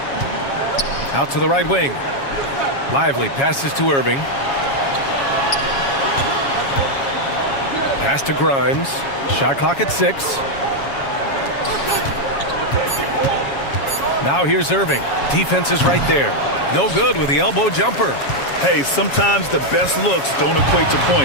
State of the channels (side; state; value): right; late; 7.3 ms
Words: Out to the right wing. Lively passes to Irving. Pass to Grimes. Shot clock at 6. Now here's Irving. Defense is right there. No good with the elbow jumper. Hey, sometimes the best looks don't equate to